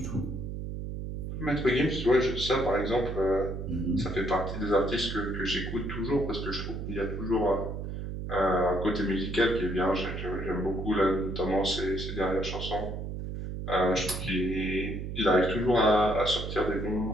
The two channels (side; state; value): right; noise; hum, 6 dB below the sound